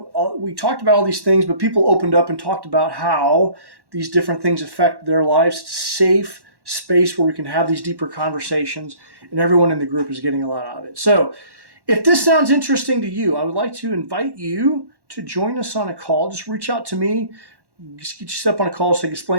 we talked about all these things, but people opened up and talked about how these different things affect their lives. Safe space where we can have these deeper conversations, and everyone in the group is getting a lot out of it. So if this sounds interesting to you, I would like to invite you to join us on a call. Just reach out to me, just get you set up on a call so I can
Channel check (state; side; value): late; left; 1.1 ms